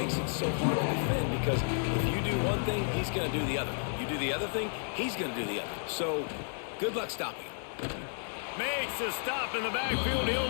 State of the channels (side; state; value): right; silent; digital silence